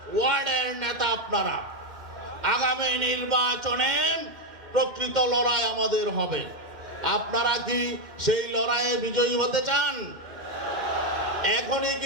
ওয়ার্ডের নেতা আপনারা, আগামী নির্বাচনে প্রকৃত লড়াই আমাদের হবে। আপনারা কি সেই লড়াইয়ে বিজয়ী হতে চান? এখনই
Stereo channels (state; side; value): late; left; 2.1 ms